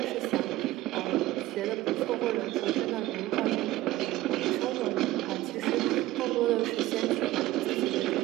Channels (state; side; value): quieter; left; 16.5 dB